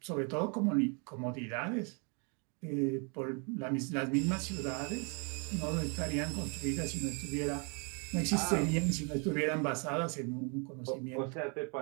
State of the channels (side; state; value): left; quieter; 35.9 dB